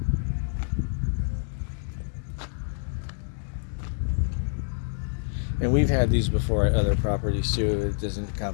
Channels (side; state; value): right; silent; digital silence